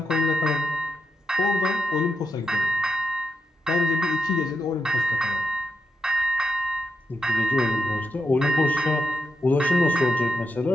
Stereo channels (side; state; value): both; normal; correlation 0.84